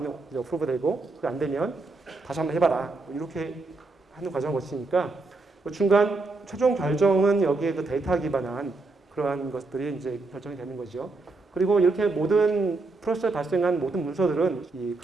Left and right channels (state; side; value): quieter; left; 3.5 dB